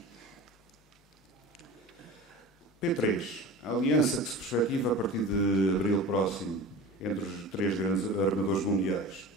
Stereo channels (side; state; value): both; normal; correlation 0.35